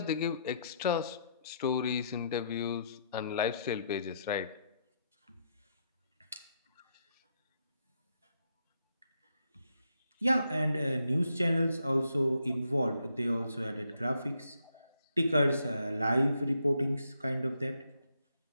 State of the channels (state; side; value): inverted; both; correlation -0.76